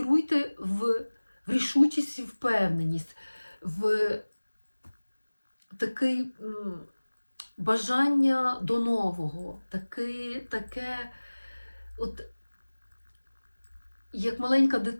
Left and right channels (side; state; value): both; inverted; correlation -1.00